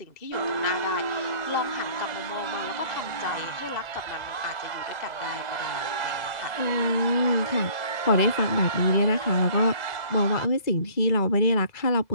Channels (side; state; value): right; late; 2.0 ms